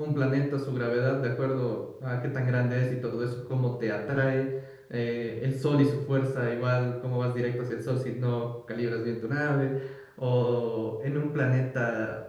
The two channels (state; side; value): identical; both; correlation 1.00